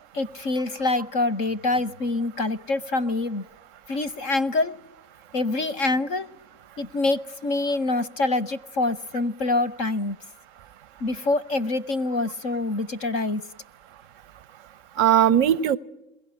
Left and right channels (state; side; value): late; right; 3.7 ms